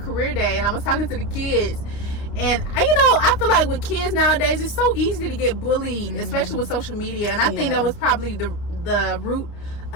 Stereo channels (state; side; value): late; right; 29 ms